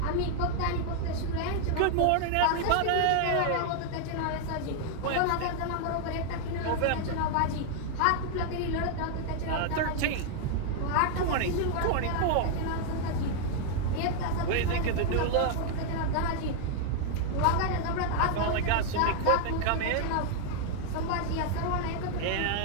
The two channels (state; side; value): different; both; correlation 0.00